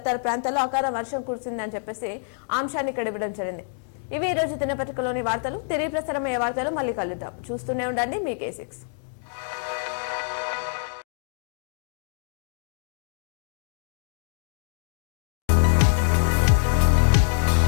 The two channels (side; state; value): right; silent; digital silence